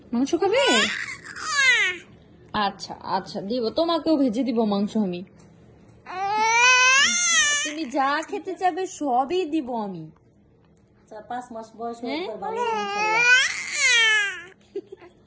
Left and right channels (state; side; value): identical; both; correlation 1.00